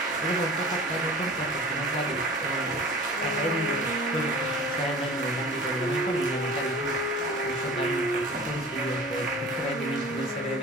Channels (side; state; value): both; normal; correlation 0.41